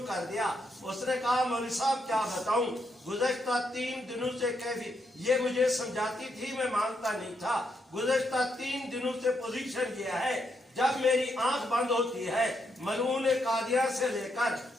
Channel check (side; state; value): both; normal; correlation 0.79